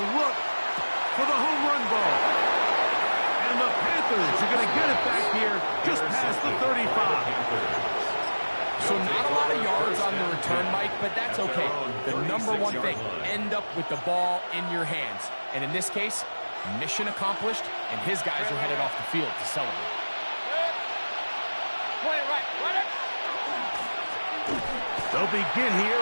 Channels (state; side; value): inverted; both; correlation -1.00